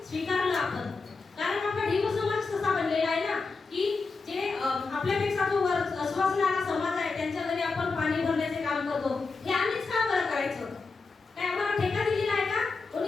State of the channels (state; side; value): quieter; right; 4.2 dB